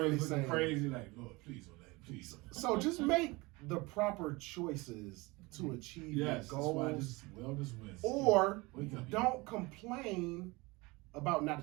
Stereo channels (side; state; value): left; quieter; 23.9 dB